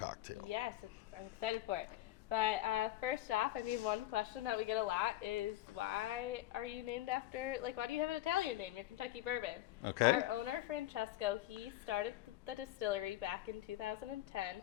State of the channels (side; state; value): right; quieter; 15.1 dB